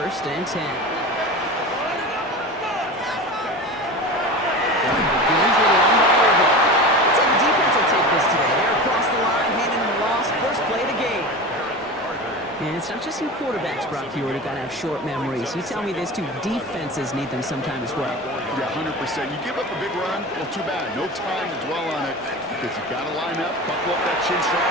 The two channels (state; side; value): normal; both; correlation 0.30